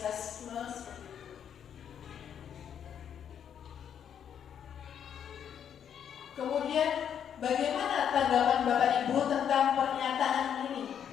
seperti itu. Kemudian bagaimana tanggapan Bapak Ibu tentang pernyataan ini?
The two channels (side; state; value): right; quieter; 8.6 dB